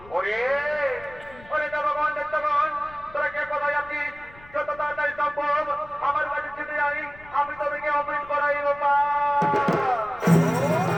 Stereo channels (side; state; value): left; noise; rumble, 22 dB below the sound